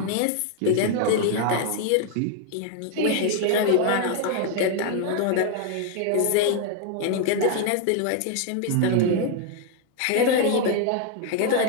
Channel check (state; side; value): different; both; correlation 0.00